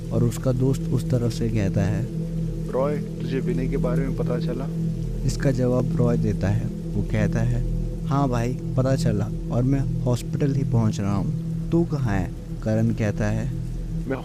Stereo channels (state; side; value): identical; both; correlation 1.00